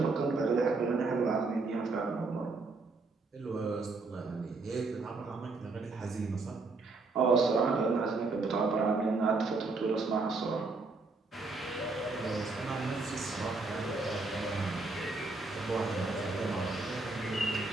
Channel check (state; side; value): quieter; left; 3.7 dB